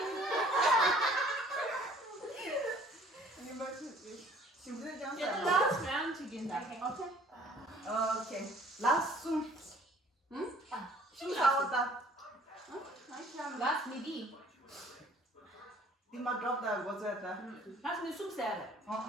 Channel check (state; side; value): normal; both; correlation 0.54